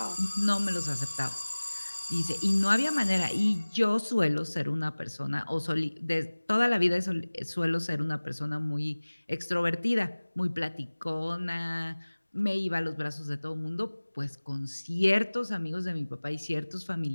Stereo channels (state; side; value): inverted; both; correlation -1.00